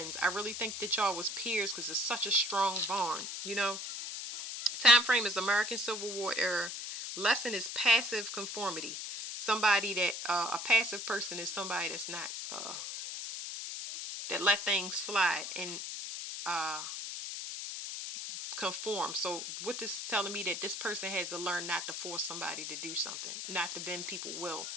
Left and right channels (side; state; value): left; noise; hiss, 6 dB below the sound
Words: I really think that y'all was peers because it's such a strong bond, you know. Time frame is American Civil War era. Lesson is passive conformity. Somebody that, a passive person is somebody that's not, that let things slide and conform. So what this is telling me, that this person has to learn not to force somebody to do something, not to bend people will.